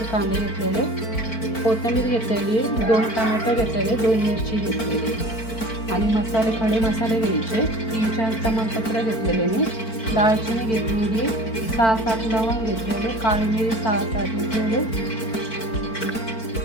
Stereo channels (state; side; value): late; right; 4.5 ms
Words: कांदे घेतलेले, कोथिंबीर घेतलेली, 2 टमॅटो घेतलेले, 2 मिरची घेतलेली आणि मसाले, खडे मसाले घ्यायचे. 3-4 तमालपत्र घेतलेले मी, दालचिनी घेतलेली, 6-7 लवंग घेतलेले, काळी मिरी 6-7 घेतलेले,